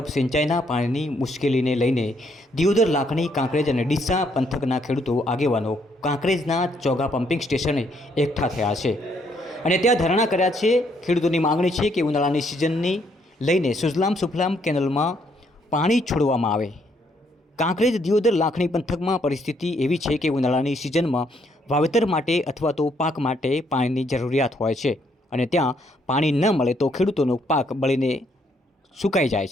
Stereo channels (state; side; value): normal; both; correlation 0.71